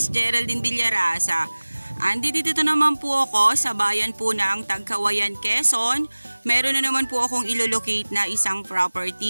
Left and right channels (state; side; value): inverted; both; correlation -1.00